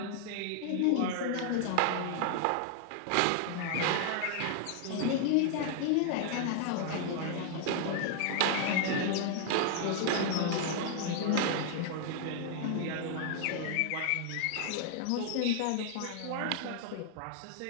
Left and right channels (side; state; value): both; different; correlation 0.00